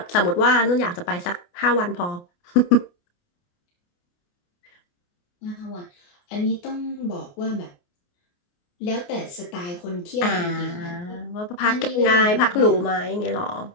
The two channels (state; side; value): late; right; 28 ms